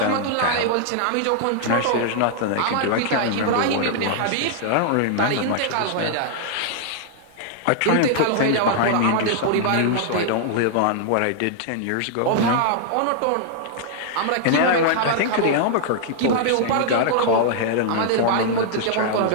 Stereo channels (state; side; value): different; both; correlation -0.01